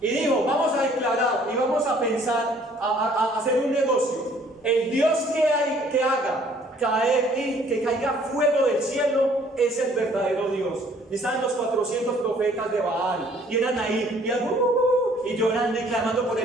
y dijo: vamos a declarar y vamos a pensar, a hacer un negocio. El Dios que haga caer y que caiga fuego del cielo es el verdadero Dios. Y estaban los 400 profetas de Baal, y eran ahí, y llorando y clamando por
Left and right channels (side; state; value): both; normal; correlation 0.59